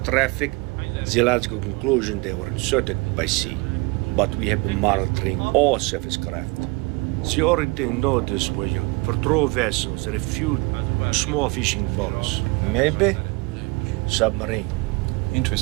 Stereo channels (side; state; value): left; quieter; 25.8 dB